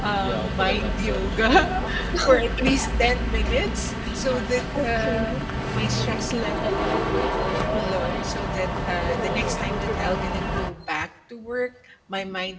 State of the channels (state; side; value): identical; both; correlation 1.00